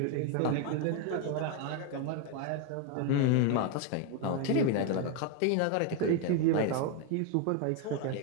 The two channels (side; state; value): both; different; correlation 0.01